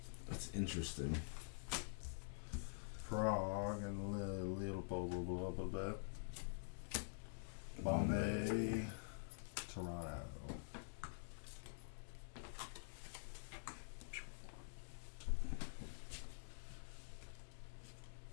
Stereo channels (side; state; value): right; silent; digital silence